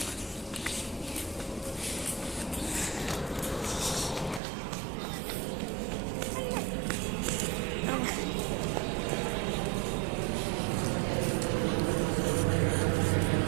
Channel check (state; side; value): drops out; left; at 4.4 s